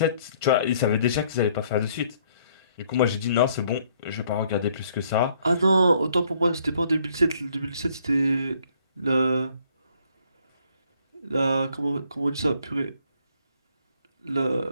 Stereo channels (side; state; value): both; inverted; correlation -0.64